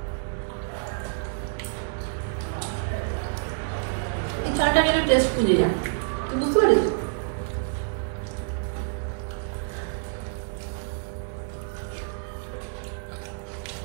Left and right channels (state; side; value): silent; left; 60 dB below the other